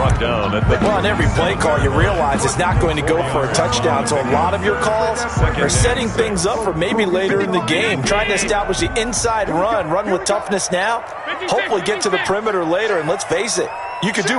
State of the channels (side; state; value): both; identical; correlation 1.00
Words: down at the... Well, on every play call, you realize it's not going to go for a touchdown. So a lot of your calls are setting things up for maybe later in the game, trying to establish the inside run with toughness now, hopefully get to the perimeter later. And let's face it, you could do